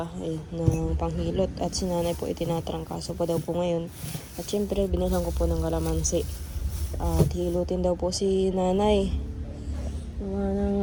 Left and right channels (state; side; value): identical; both; correlation 1.00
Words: ng panghilot. At si Nanay po itinatrangkaso pa daw po ngayon. At syempre, binilhan ko po ng kalamansi. At hilutin daw po si Nanay.